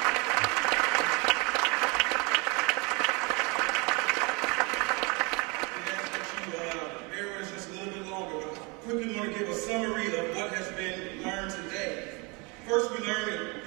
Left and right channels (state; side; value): quieter; left; 29.1 dB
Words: Quickly want to give a summary of what has been learned today. First, we learned that